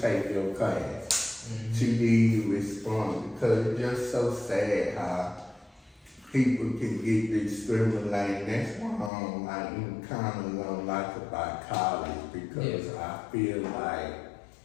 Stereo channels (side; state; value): right; drops out; at 9.1 s